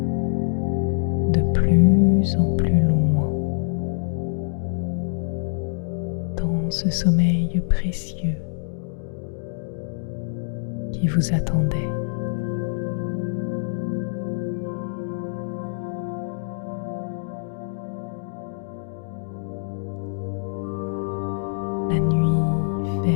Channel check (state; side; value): silent; right; digital silence